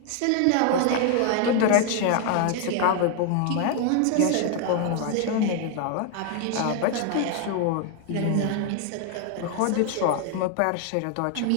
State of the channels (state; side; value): different; both; correlation 0.00